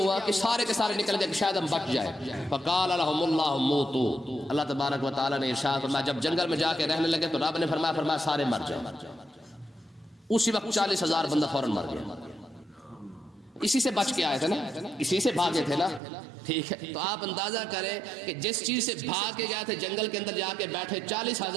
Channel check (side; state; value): left; drops out; at 16.0 s